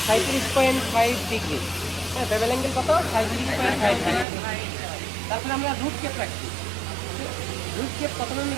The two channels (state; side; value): drops out; left; at 4.2 s